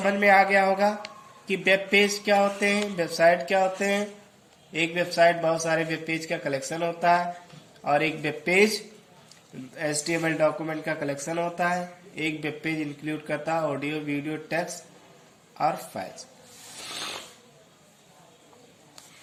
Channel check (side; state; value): both; identical; correlation 1.00